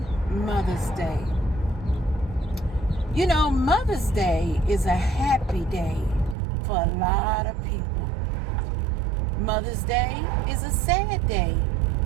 Mother's Day. You know, Mother's Day is a happy day for a lot of people. Mother's Day is a sad day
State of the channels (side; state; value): left; drops out; at 6.4 s